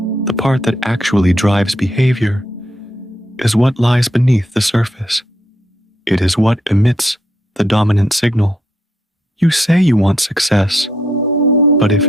part that actually drives behavior, is what lies beneath the surface. It is what emits the dominant signal. You say you want success, but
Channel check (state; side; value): normal; both; correlation 0.76